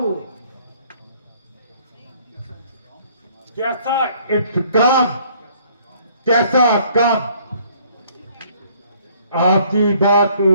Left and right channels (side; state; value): both; inverted; correlation -0.60